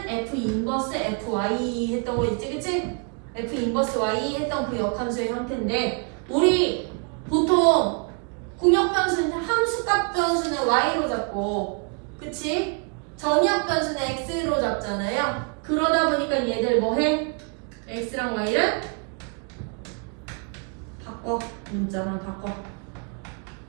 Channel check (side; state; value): left; quieter; 37.1 dB